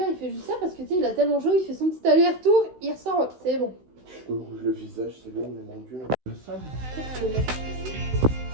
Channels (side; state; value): left; late; 16 ms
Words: il fait juste ça parce que tu sais, il a tellement chaud, il fait son petit aller-retour, il ressort, c'est bon. Je me rouge le visage, c'est bon, mais mon dieu. Le sable.